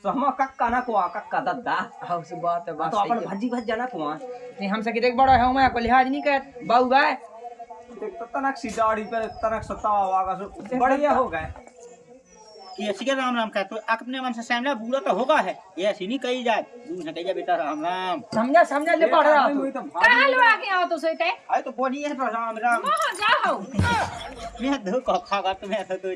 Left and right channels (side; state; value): both; identical; correlation 1.00